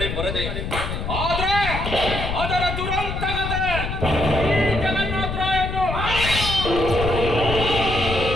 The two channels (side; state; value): left; noise; rumble, 4 dB below the sound